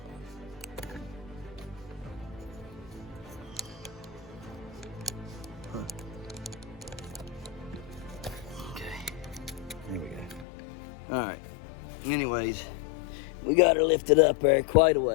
All right. Anyways, we got her lifted up there quite a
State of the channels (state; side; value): drops out; right; at 10.5 s